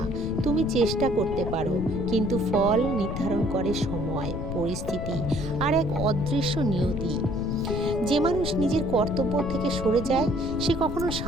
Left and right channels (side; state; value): left; noise; rumble, 5 dB below the sound